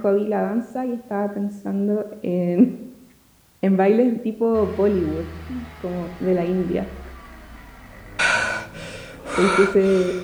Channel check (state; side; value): identical; both; correlation 1.00